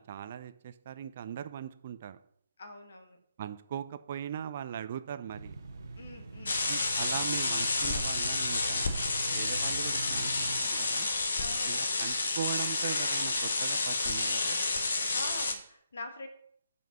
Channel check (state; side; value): inverted; both; correlation -0.79